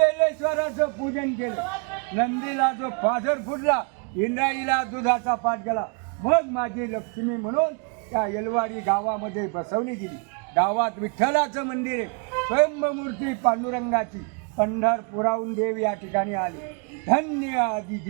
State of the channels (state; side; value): quieter; left; 37.0 dB